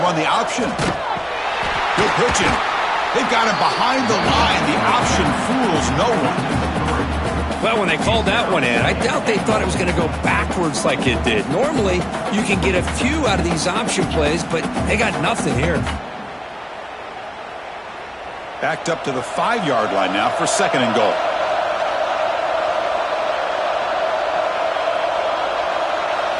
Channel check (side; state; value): both; identical; correlation 1.00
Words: run the option. Good pitching. They've got him behind the line. The option fools no one. Well, when they called that one in, I doubt they thought it was going to go backwards like it did. Normally, you can get a few out of these option plays, but they got nothing here. Backed up to the 5-yard line now for 2nd and goal.